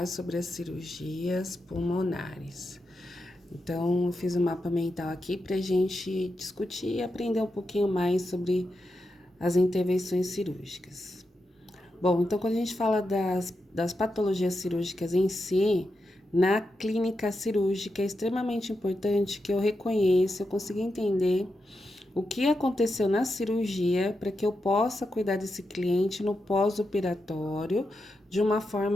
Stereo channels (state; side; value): normal; both; correlation 0.87